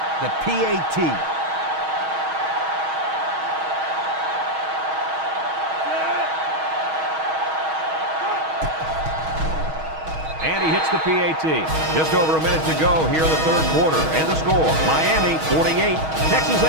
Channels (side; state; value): left; late; 6.3 ms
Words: the PAT. And he hits the PAT. Just over a minute to go here in the third quarter. And the score, Miami 48, Texas